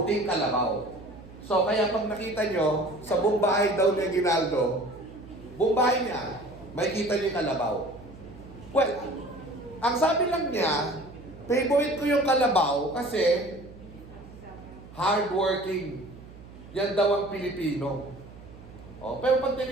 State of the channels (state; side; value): noise; right; hum, 18 dB below the sound